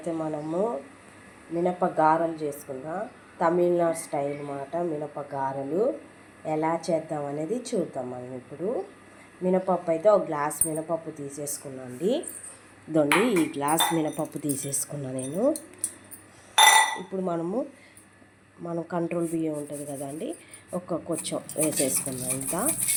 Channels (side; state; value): both; identical; correlation 1.00